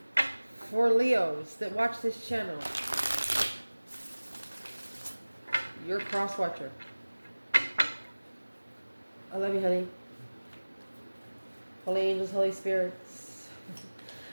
for Leos that watch this channel. You're Crosswatcher. I love you, honey. Holy angels, Holy spirits,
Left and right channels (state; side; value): inverted; both; correlation -1.00